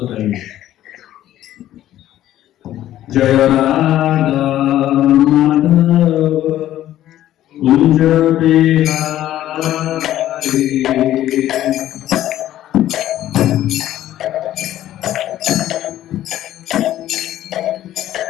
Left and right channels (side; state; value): right; quieter; 13.0 dB